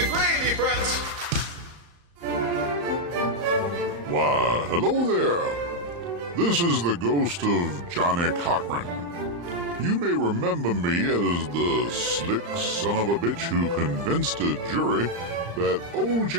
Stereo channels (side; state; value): left; late; 35 ms